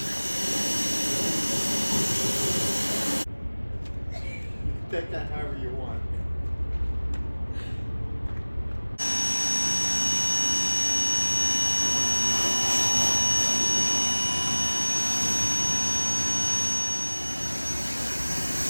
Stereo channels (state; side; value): inverted; both; correlation -1.00